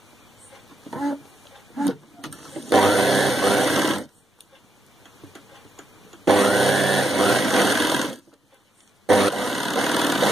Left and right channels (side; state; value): both; normal; correlation 0.82